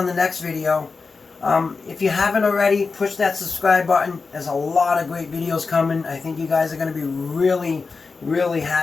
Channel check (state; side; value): quieter; right; 4.5 dB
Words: the next video. If you haven't already, push that subscribe button. There's a lot of great videos coming. I think you guys are going to be really, really